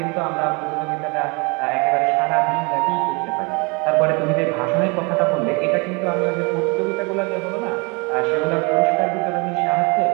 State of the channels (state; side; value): quieter; left; 29.9 dB